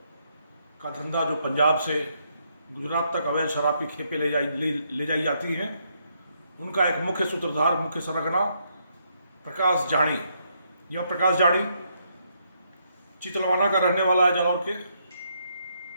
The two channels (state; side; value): inverted; both; correlation -0.75